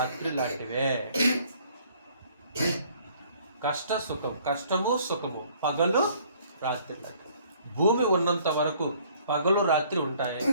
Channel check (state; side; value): inverted; both; correlation -0.59